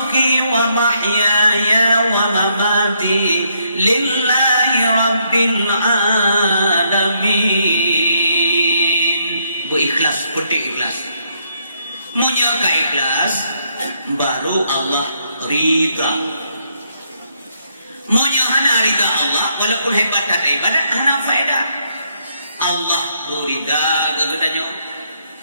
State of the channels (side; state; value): both; inverted; correlation -0.74